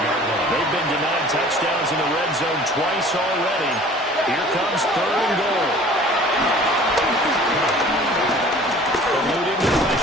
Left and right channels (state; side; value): normal; both; correlation 0.48